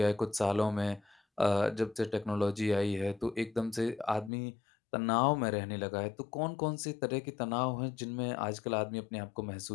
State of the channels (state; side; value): drops out; right; at 4.3 s